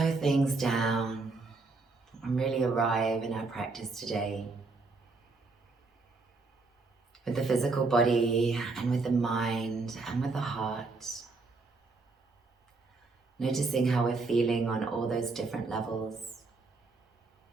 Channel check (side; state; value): left; quieter; 3.8 dB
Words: things down and really arrive in our practice today with the physical body and with the mind and with the heart? Noticing how we're feeling on all those different levels.